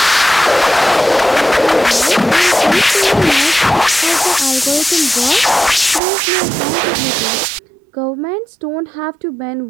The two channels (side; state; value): left; drops out; at 6.0 s